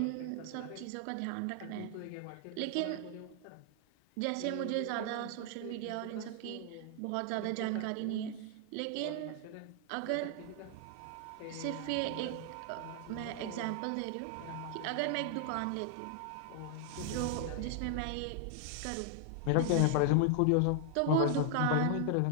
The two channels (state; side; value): different; both; correlation 0.00